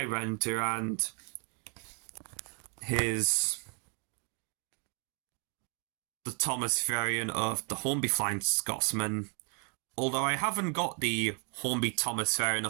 render and the Thomas variant of the Hornby Flying Scotsman. Although I haven't got the Hornby Thomas variant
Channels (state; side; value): quieter; left; 38.5 dB